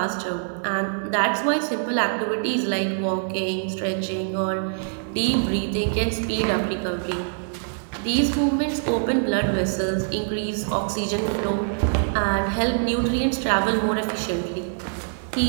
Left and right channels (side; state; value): left; silent; 62 dB below the other